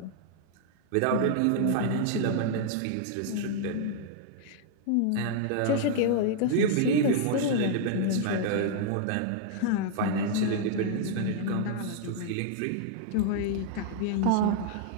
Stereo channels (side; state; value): both; different; correlation -0.01